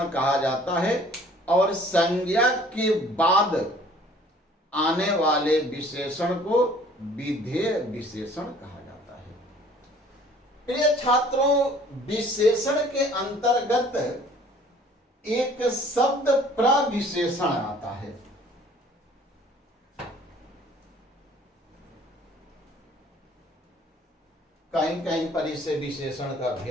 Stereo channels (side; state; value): both; normal; correlation 0.54